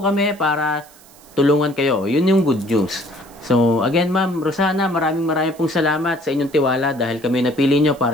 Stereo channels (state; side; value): noise; right; hiss, 25 dB below the sound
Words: kami para tulungan kayo. Yun yung good news. So, again, Ma'am Rosana, maraming pong salamat sa inyong tiwala dahil kami napili nyo